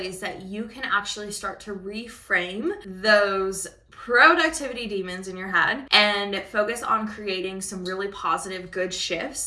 that you can actually start to reframe those productivity demons in your head and focus on creating some really positive, good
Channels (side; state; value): both; identical; correlation 1.00